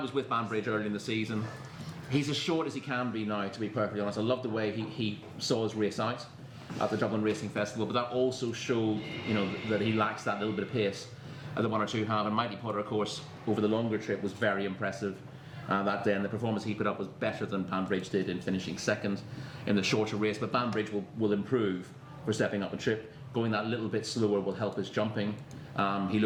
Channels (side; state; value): both; identical; correlation 1.00